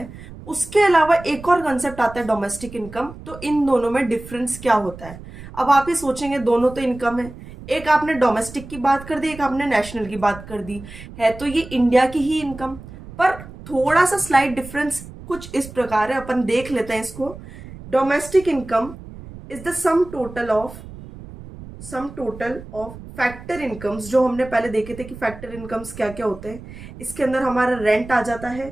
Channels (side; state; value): right; noise; rumble, 15 dB below the sound